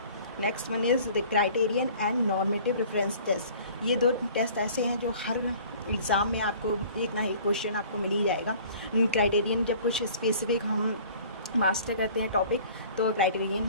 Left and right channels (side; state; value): both; inverted; correlation -0.49